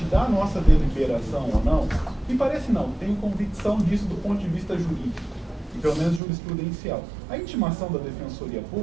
da nossa deliberação ou não, me parece não, tenho convicção disso do ponto de vista jurídico, e pelo menos jurisprudencial. A intimação da Defensoria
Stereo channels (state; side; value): drops out; left; at 6.2 s